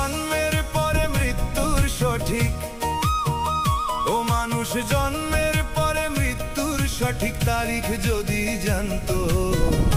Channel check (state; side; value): identical; both; correlation 1.00